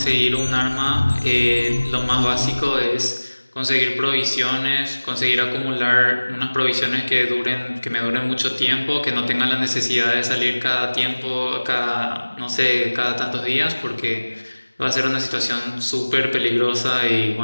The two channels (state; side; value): inverted; both; correlation -1.00